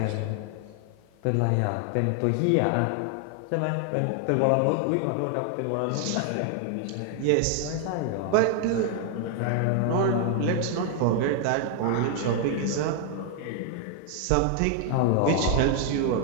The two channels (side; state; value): both; different; correlation 0.00